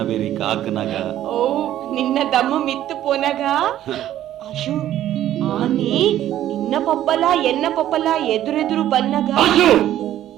ಬೇರಿ ಕಾಕನಗ. ಓ ನಿನ್ನ ದಮ್ಮ ಮಿತ್ತು ಪೋನಗ ಅಶು ಆನಿ ನಿನ್ನ ಪಪ್ಪಲ ಎನ್ನ ಪಪ್ಪಲ ಎದುರೆದುರು ಬನ್ನಗ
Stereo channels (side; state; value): left; quieter; 12.4 dB